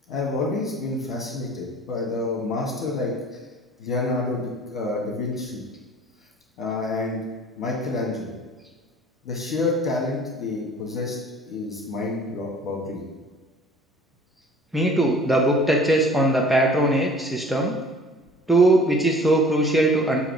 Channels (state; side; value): normal; both; correlation 0.48